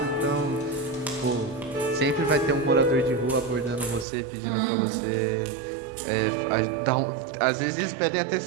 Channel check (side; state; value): left; drops out; at 4.0 s